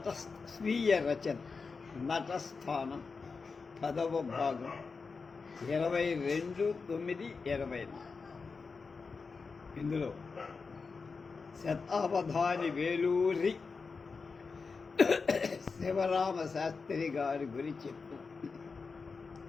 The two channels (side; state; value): right; quieter; 4.7 dB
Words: స్వీయ రచన నటస్థానం 10వ భాగం 22/9/20. ఇందులో శతావధాని వేలూరి శివరామ శాస్త్రి గారి గురించి చెప్తూ